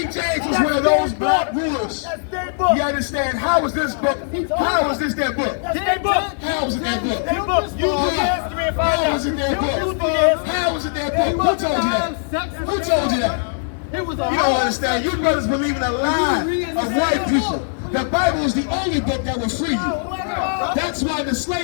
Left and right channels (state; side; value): silent; right; digital silence